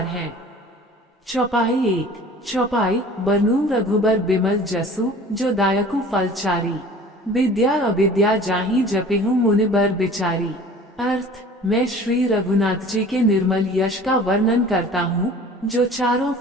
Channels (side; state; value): both; normal; correlation 0.45